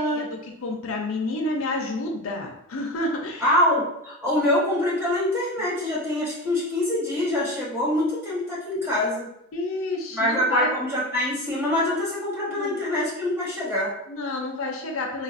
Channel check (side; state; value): both; normal; correlation 0.24